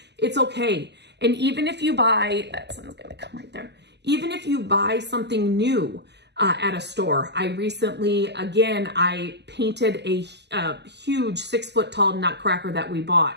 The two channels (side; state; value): left; late; 0.50 ms